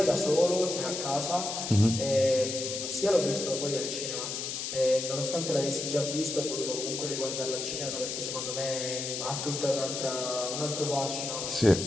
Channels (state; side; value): noise; left; hiss, 4 dB below the sound